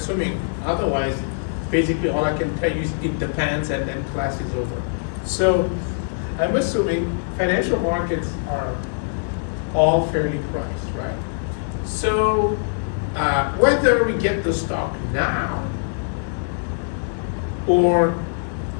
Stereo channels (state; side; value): silent; right; digital silence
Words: otherwise, basically all I can tell you is it depends, and then class is over. So I'm assuming financial markets are all fairly priced, right? So whether we get the stock now or